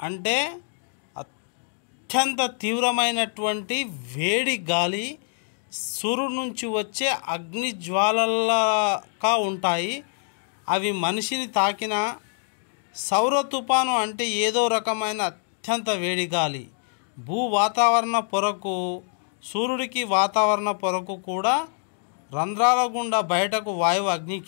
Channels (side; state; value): right; silent; 62 dB below the other